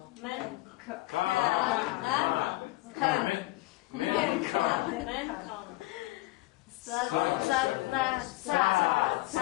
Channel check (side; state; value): right; quieter; 20.0 dB